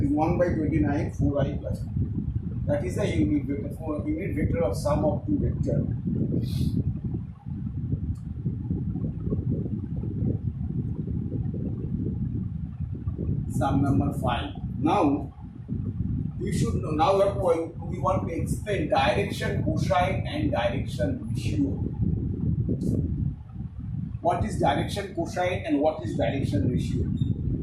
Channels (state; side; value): identical; both; correlation 1.00